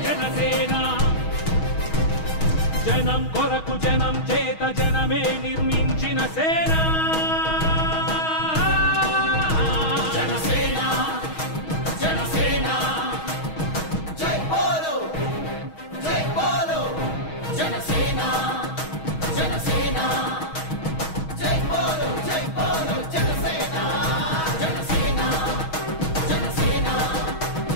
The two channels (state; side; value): late; right; 6.3 ms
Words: జనసేన జనం కొరకు జనం చేత జనమే నిర్మించిన సేన జనసేన జనసేన జై బోలో జనసేన జనసేన జై బోలో జనసేన జనసేన జనసేన